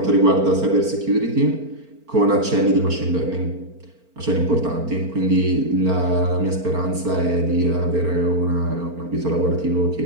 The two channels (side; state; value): left; late; 4.4 ms